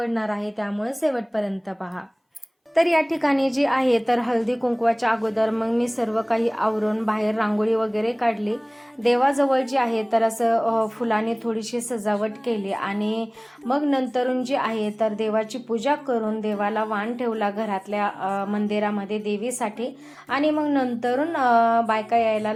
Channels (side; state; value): both; identical; correlation 1.00